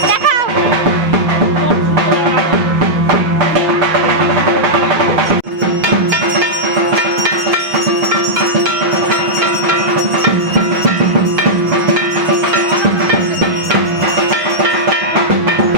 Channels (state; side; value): late; left; 6.4 ms